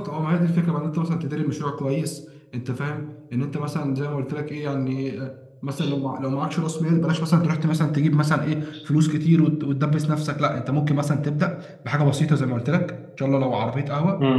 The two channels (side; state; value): both; identical; correlation 1.00